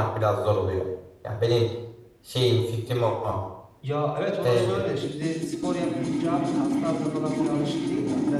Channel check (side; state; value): both; identical; correlation 1.00